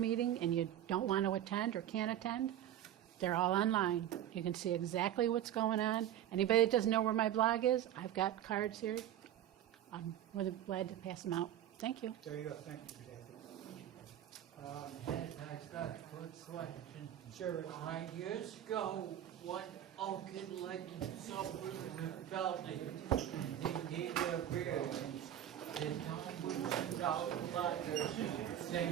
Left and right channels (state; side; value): quieter; left; 11.4 dB